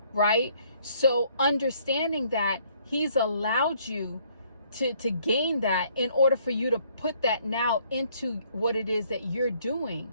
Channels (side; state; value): both; inverted; correlation -0.64